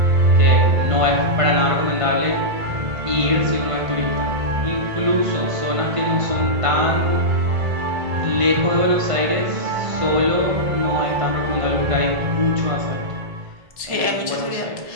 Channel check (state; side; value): late; left; 1.5 ms